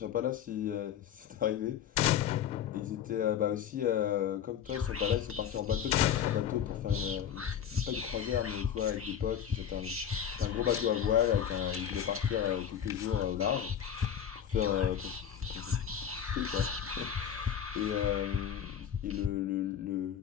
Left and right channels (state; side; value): quieter; right; 9.0 dB